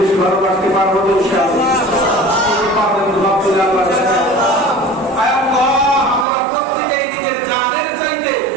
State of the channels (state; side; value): drops out; left; at 6.2 s